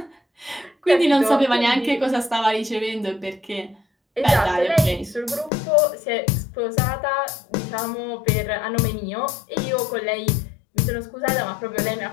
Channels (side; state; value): right; drops out; at 5.5 s